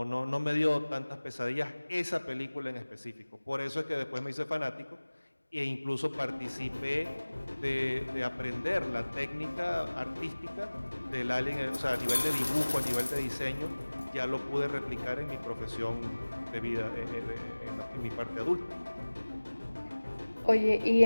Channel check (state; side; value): inverted; both; correlation -1.00